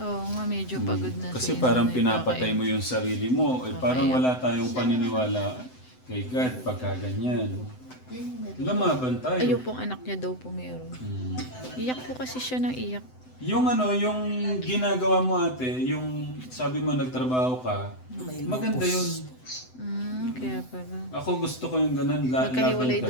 nga, medyo pagod na. Kasi parang pinapatay mo yung sarili mo. Parang wala tayong paniniwala kay God pagka ganyan. Lumaban tayo. Ayun pong anak niya daw po meron. Iyak po kasi siya ng iyak. Yung yung ginagawa mo ate, yung sabi mo nagtrabaho ka, maganda yun. Kaya pala. Ako gusto ko yung ganun, Magkahiwalay laban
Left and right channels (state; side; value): late; right; 7.9 ms